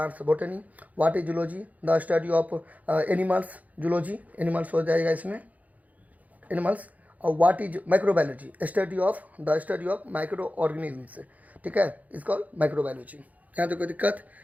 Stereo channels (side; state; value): left; late; 0.076 ms